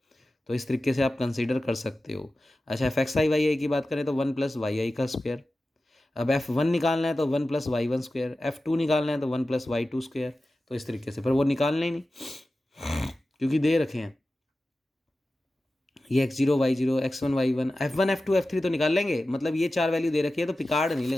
तो इस तरीके से आप कंसीडर कर सकते हो। अच्छा, एफ एक्स आई वाई आई की बात करें तो 1 + y i²। अब F1 निकालना है तो 1 + y1²। F2 निकालना है तो 1 + y2²। तो इस तरीके से, पर वो निकालना ही नहीं क्योंकि दे रखे हैं ये x0 y0 x1 y1 f1 f2 f3 तो निकाल लेंगे, मतलब ये 4 वैल्यू दे रखी है तो पिकार्ड नहीं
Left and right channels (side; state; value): both; normal; correlation 0.94